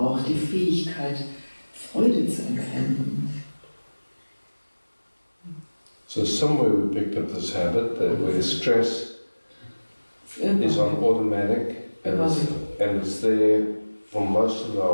die Fähigkeit, Freude zu empfinden. So somewhere we picked up this habit that where stress is on automatic and it's there for most of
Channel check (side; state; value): both; inverted; correlation -1.00